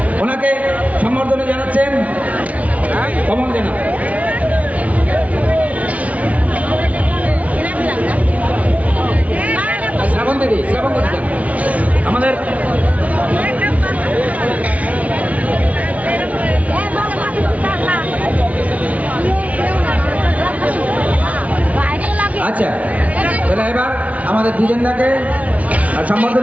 ওনাকে সম্বর্ধনা জানাচ্ছেন কমল জানা। শ্রাবণ দিদি আমাদের আচ্ছা, তাহলে এবার আমাদের দ্বিজেন্দাকে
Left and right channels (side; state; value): left; late; 0.068 ms